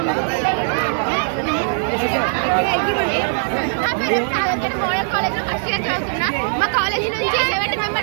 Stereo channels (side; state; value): left; silent; digital silence